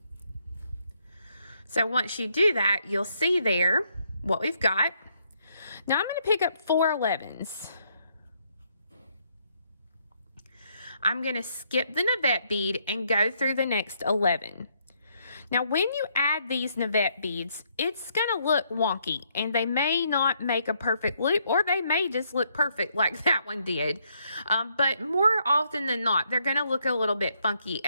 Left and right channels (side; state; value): both; inverted; correlation -0.73